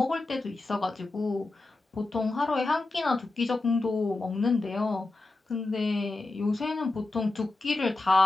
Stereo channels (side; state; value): right; quieter; 3.1 dB